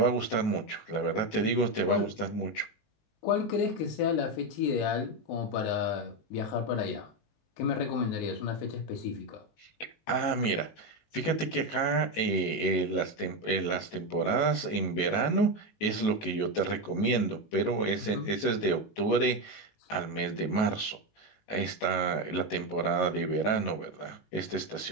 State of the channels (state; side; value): late; right; 18 ms